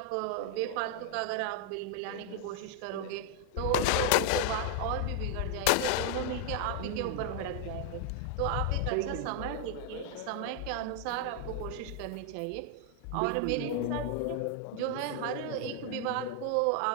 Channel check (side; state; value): both; different; correlation 0.00